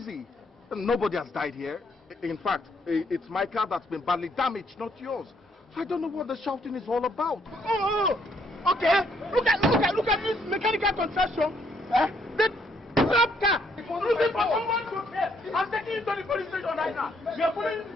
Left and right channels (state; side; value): normal; both; correlation 0.70